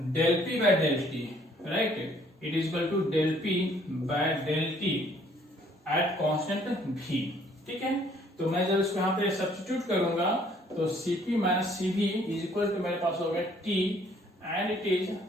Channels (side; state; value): both; normal; correlation 0.61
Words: del p by del t, right, it is equal to del p by del t at constant v, ठीक है। तो मैं जब इसको यहाँ पे सब्स्टिट्यूट करूंगा तो cp minus cv is equal to मेरे पास हो गया t and it is